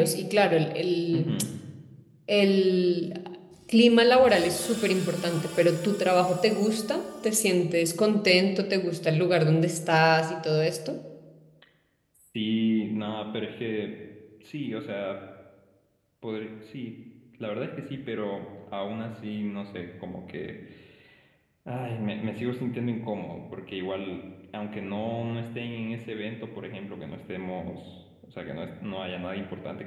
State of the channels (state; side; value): identical; both; correlation 1.00